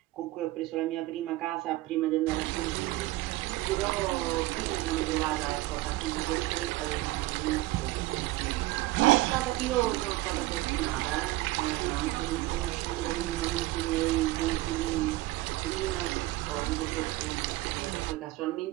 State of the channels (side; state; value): left; quieter; 18.1 dB